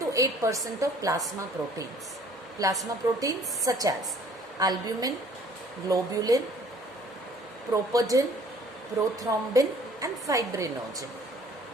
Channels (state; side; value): normal; both; correlation 0.55